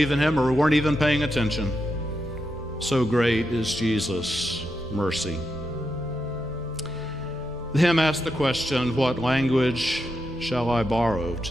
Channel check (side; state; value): both; normal; correlation 0.85